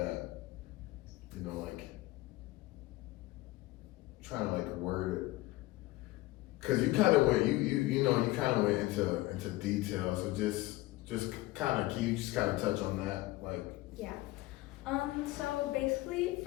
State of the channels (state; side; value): quieter; right; 18.9 dB